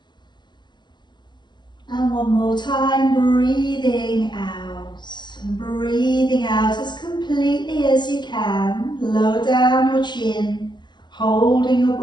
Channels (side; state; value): right; late; 0.21 ms